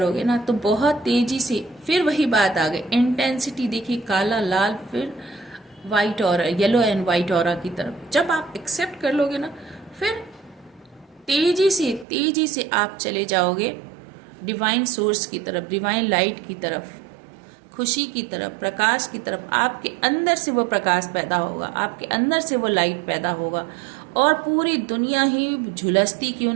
ना तो बहुत तेजी से फिर वही बात आ गई, इंटेंसिटी देखिए, काला लाल फिर वाइट और येलो एंड वाइट ऑरा की तरफ। जब आप एक्सेप्ट कर लोगे ना फिर तेजी से आप चले जाओगे डिवाइन सोर्स की तरफ, डिवाइन लाइट की तरफ, खुशी की तरफ, प्रकाश की तरफ। आपके अंदर से वो प्रकाश पैदा होगा, आपके अंदर से वो लाइट पैदा होगा, और पूरी दुनिया ही झुलसती क्यों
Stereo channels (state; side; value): drops out; left; at 12.1 s